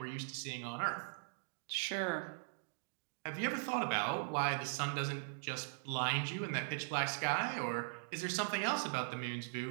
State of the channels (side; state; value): left; silent; digital silence